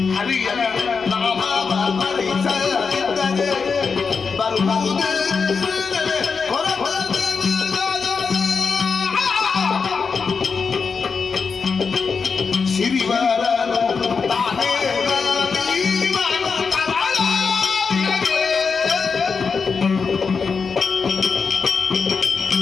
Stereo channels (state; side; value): quieter; right; 5.3 dB